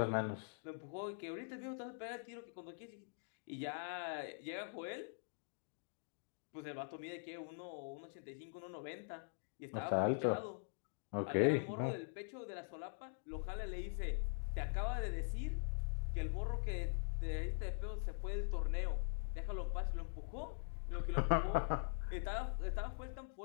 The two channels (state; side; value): silent; right; digital silence